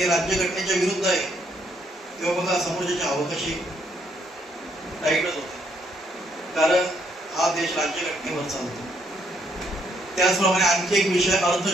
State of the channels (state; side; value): normal; both; correlation 0.71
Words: राज्यघटनेच्या विरुद्ध आहे. तेव्हा बघा समोरच्याची हवा कशी टाईटच होते, कारण हा देश राज्यघटनेवर चालतो. त्याचप्रमाणे आणखी एक विषय